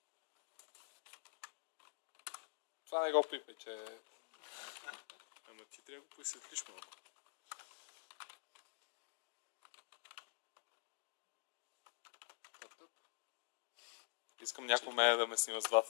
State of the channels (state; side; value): silent; right; digital silence